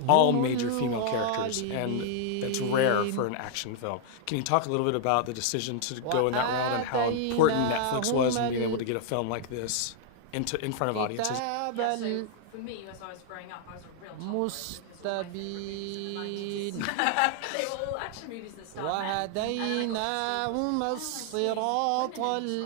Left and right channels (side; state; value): both; different; correlation 0.00